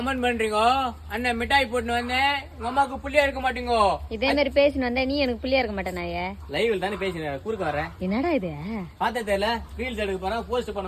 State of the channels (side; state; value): both; identical; correlation 1.00